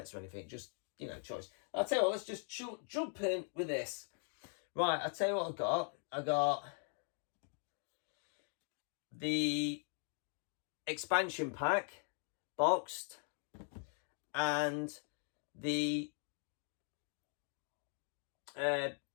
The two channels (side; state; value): right; silent; 51 dB below the other